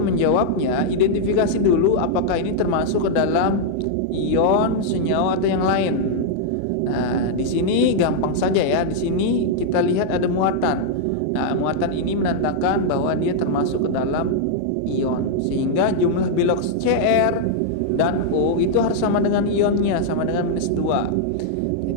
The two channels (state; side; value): different; both; correlation -0.01